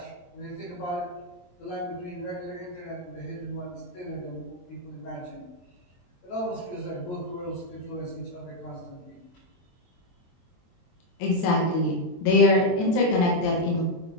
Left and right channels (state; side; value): late; right; 23 ms